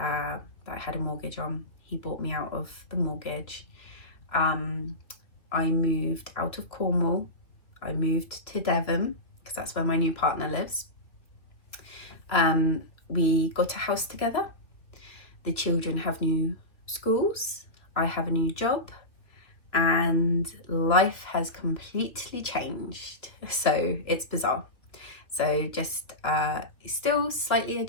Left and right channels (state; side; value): late; right; 2.8 ms